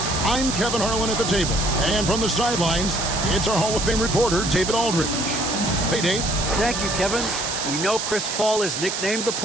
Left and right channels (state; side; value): noise; right; hiss, 3 dB below the sound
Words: I'm Kevin Harlan at the table. And from the sidelines, it's our Hall of Fame reporter, David Aldridge. Hey, Dave. Thank you, Kevin. We know Chris Paul is nicknamed the